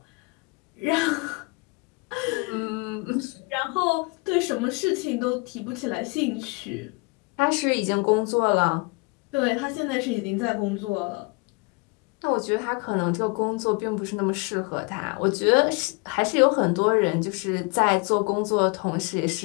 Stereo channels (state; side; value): quieter; right; 29.2 dB